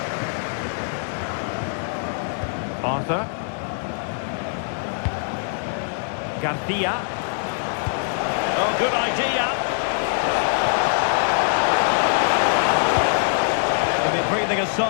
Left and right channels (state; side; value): silent; right; digital silence